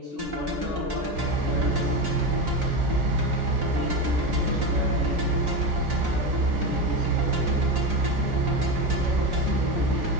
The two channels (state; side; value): late; left; 3.5 ms